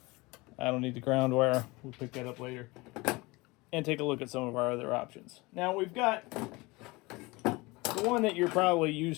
I don't need the ground wire. We'll pick that up later. And take a look at some of our other options. Now we've got the one that you're probably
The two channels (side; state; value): right; quieter; 23.6 dB